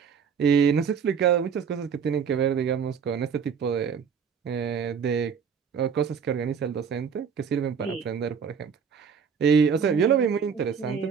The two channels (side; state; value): left; quieter; 6.8 dB